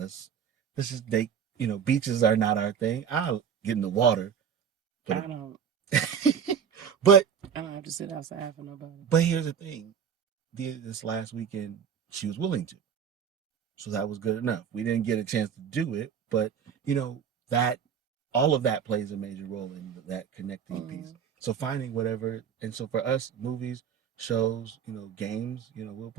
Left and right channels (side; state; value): left; quieter; 7.7 dB